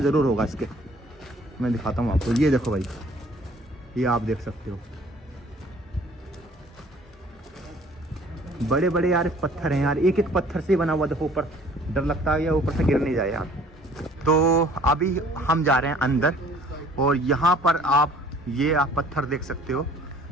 जरूर होगा इसके। मैं दिखाता हूँ आपको, ये देखो भाई, ये आप देख सकते हो। बड़े बड़े यार पत्थर हैं यार, एक एक पत्थर से बना हुआ। देखो ऊपर, डर लगता है या ऊपर से गिर नहीं जाए यार। तो अभी हम जा रहे हैं अंदर, और यहाँ पर आप ये आप पत्थर देख सकते हो,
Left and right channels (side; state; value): both; normal; correlation 0.54